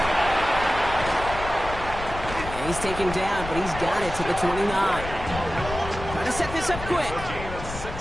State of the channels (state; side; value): noise; left; rumble, 9 dB below the sound